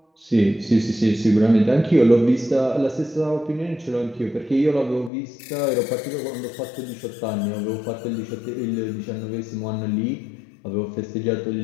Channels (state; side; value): drops out; right; at 5.1 s